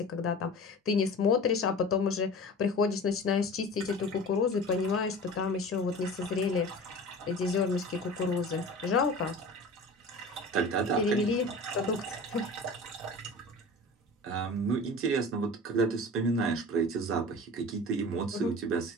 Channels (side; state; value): both; normal; correlation 0.37